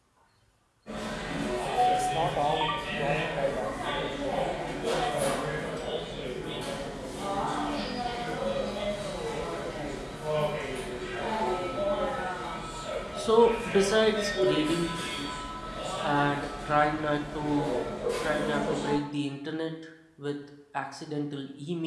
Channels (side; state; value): both; identical; correlation 1.00